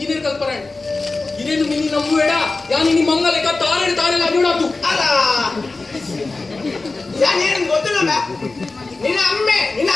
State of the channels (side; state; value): right; quieter; 3.6 dB